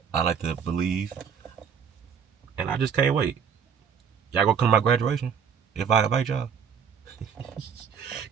I like to believe, and I just can't wait. Y'all gonna come to my graduation if I invite y'all?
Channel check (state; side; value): quieter; left; 7.1 dB